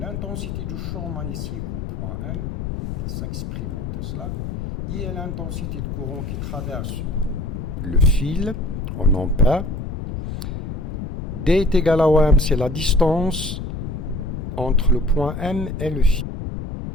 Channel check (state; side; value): noise; left; rumble, 5 dB below the sound